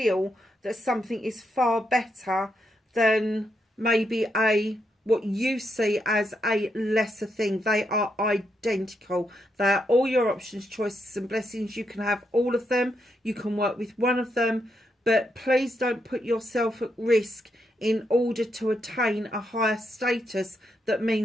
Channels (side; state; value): both; normal; correlation 0.81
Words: that something is far better than maybe what you see as a lesser thing. They are identical. They are all your options, choices and blessings. You can have all of them. You can work with one of them. But please don't put yourself at risk in order to attain a higher status that